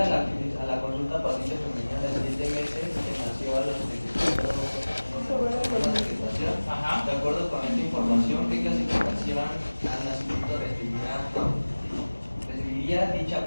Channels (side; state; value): both; inverted; correlation -1.00